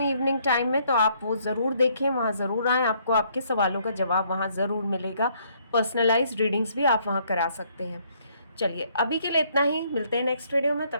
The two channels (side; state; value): both; inverted; correlation -0.67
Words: इवनिंग टाइम में, तो आप वो ज़रूर देखें, वहाँ ज़रूर आएँ, आपको आपके सवालों का जवाब वहाँ ज़रूर मिलेगा। पर्सनलाइज्ड रीडिंग्स भी आप वहाँ करा सकते हैं। चलिए, अभी के लिए इतना ही, मिलते हैं नेक्स्ट वीडियो में।